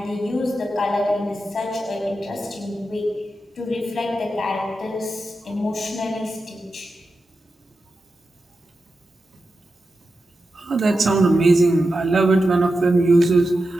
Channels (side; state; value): both; normal; correlation 0.90